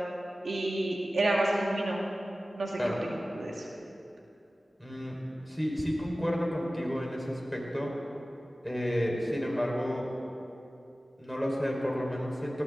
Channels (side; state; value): both; normal; correlation 0.96